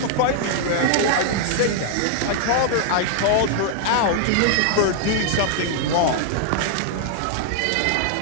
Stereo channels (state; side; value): different; both; correlation -0.01